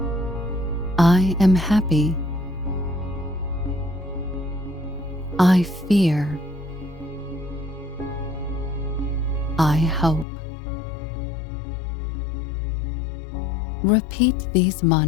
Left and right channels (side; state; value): right; drops out; at 10.2 s